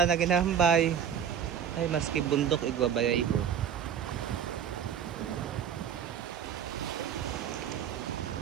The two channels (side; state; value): left; quieter; 8.6 dB